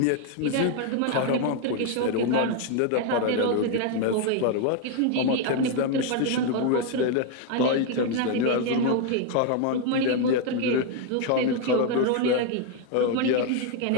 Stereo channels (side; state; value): both; different; correlation 0.01